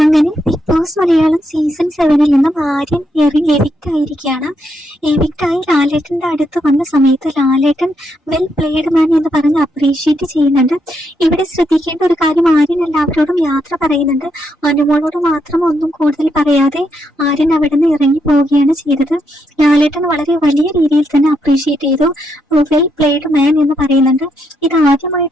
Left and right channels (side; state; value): both; normal; correlation 0.79